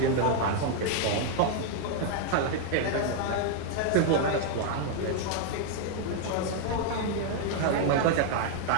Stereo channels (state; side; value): different; both; correlation 0.00